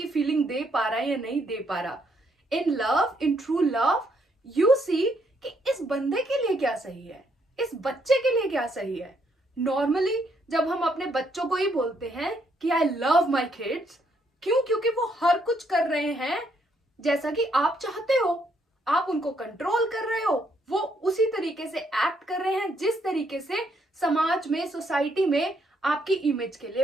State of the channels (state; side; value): normal; both; correlation 0.72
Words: फीलिंग दे पा रहा है या नहीं दे पा रहा। In love, in true love, you see कि इस बंदे के लिए क्या सही है, इस बच्चे के लिए क्या सही है। नॉर्मली जब हम अपने बच्चों को ही बोलते हैं कि आई लव माई किड्स, क्यों? क्योंकि वो हर कुछ कर रहे हैं जैसा कि आप चाहते हो, आप उनको कंट्रोल कर रहे हो, वो उसी तरीके से एक्ट कर रहे हैं जिस तरीके से समाज में, सोसाइटी में आपकी इमेज के लिए